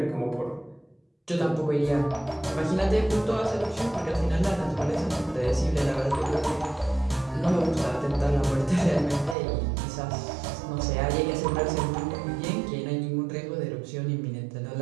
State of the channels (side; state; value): left; drops out; at 9.3 s